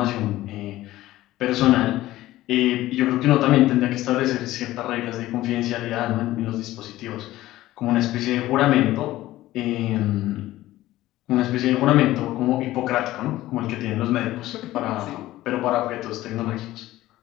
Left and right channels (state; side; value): quieter; right; 15.9 dB